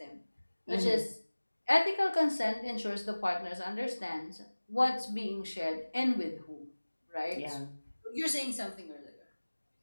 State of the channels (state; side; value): inverted; both; correlation -1.00